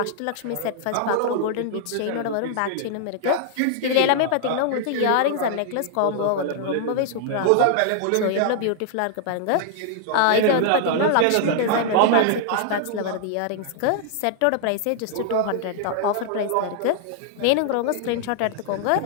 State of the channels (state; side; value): different; both; correlation -0.01